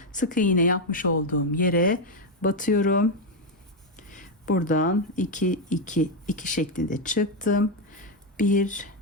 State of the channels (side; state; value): both; normal; correlation 0.04